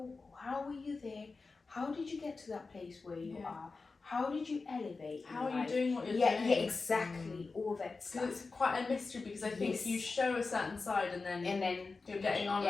How were you there? How did you get to that place where you are? How did you elevate? How are you doing what you're doing? Yeah, exactly. All that stuff. It's quite a mystery because I think you show a certain side and then you're getting on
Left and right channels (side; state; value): right; quieter; 4.1 dB